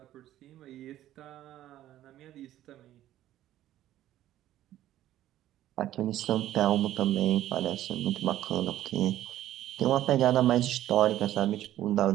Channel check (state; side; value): quieter; left; 13.3 dB